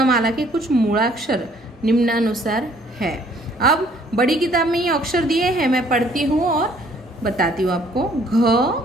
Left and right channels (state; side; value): normal; both; correlation 0.61